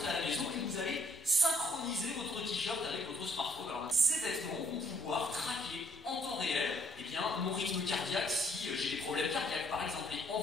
à la maison et vous allez synchroniser votre t-shirt avec votre smartphone. Alors, ces vêtements vont pouvoir traquer en temps réel mon rythme cardiaque si j'ai des problèmes cardiaques par exemple, et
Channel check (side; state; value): both; normal; correlation 0.65